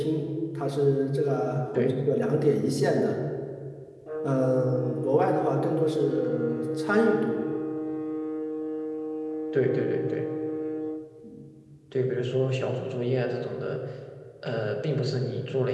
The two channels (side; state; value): both; identical; correlation 1.00